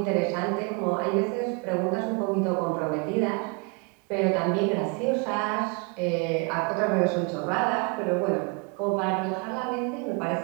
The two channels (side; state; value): left; quieter; 32.7 dB